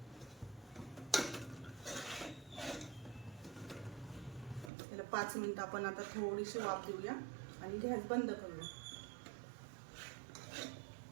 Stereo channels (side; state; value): left; drops out; at 4.7 s